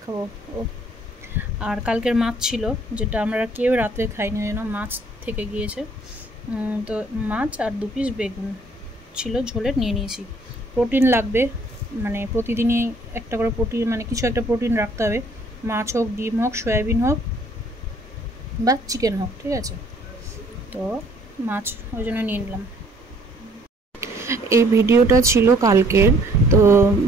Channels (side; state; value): both; normal; correlation 0.61